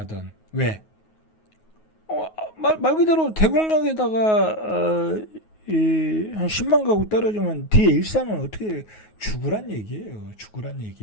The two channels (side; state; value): right; late; 9.4 ms